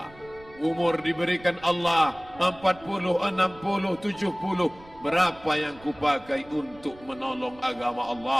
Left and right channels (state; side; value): noise; right; rumble, 23 dB below the sound